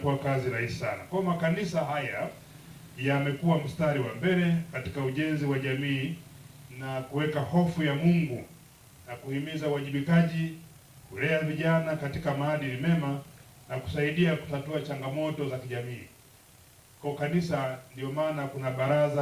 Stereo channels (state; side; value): identical; both; correlation 1.00